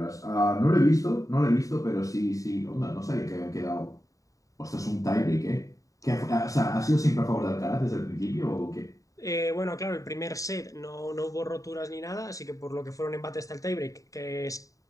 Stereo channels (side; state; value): right; late; 0.16 ms